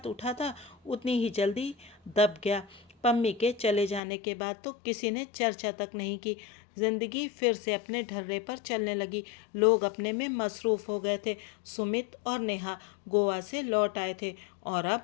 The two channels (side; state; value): right; drops out; at 4.0 s